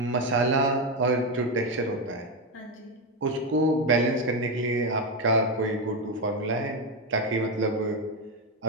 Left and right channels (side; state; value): both; normal; correlation 0.10